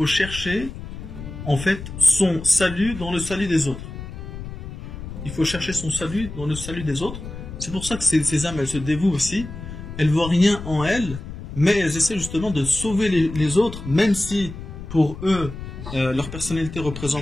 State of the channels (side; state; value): left; noise; rumble, 10 dB below the sound